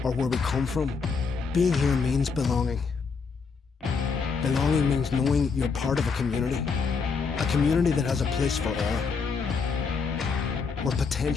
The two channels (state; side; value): quieter; right; 5.2 dB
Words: or where we come from. Being here means belonging. Belonging means knowing you're part of a community that has a place for all. Where